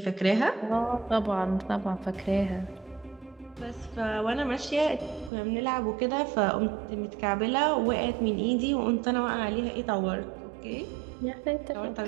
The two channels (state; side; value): drops out; left; at 5.3 s